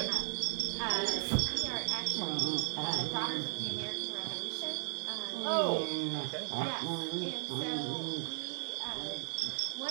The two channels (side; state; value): left; silent; 54 dB below the other